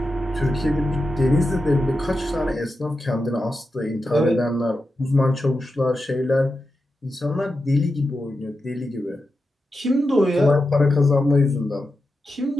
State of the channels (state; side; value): normal; both; correlation 0.89